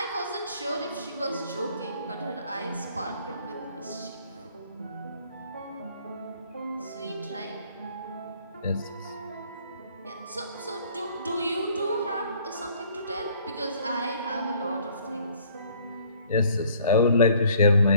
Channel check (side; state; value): both; inverted; correlation -0.59